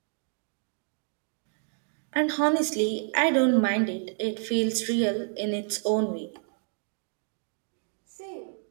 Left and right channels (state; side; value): silent; left; 58 dB below the other